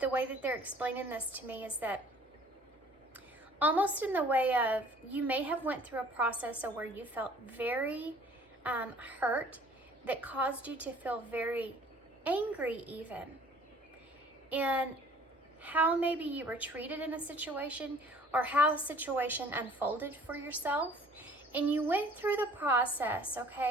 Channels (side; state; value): both; normal; correlation 0.53